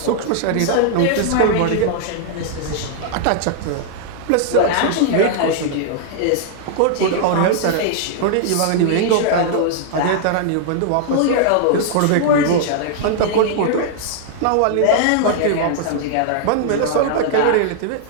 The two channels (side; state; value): both; different; correlation -0.01